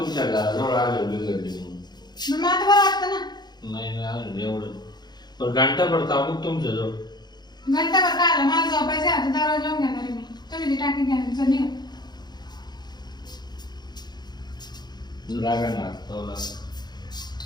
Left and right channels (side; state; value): right; late; 0.20 ms